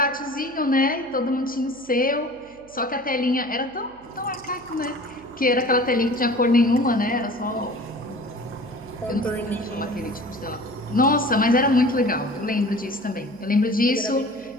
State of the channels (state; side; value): noise; right; hum, 27 dB below the sound